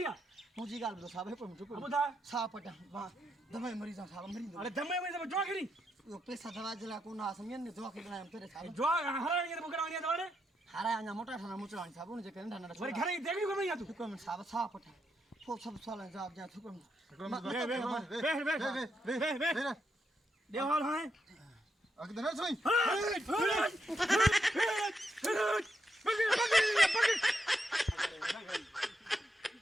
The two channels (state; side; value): normal; both; correlation 0.82